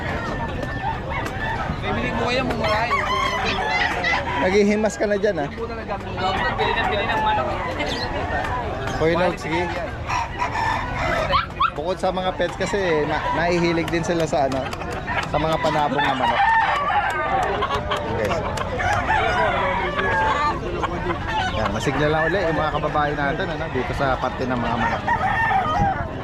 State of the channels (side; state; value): both; identical; correlation 1.00